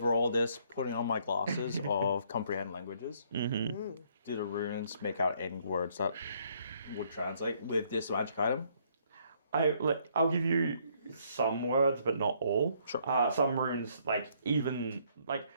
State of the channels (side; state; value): both; inverted; correlation -0.67